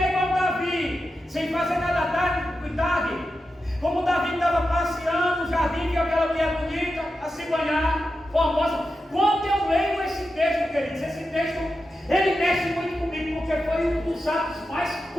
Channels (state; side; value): normal; both; correlation 0.90